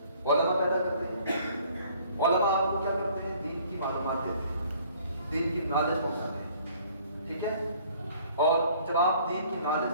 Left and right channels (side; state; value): both; inverted; correlation -0.57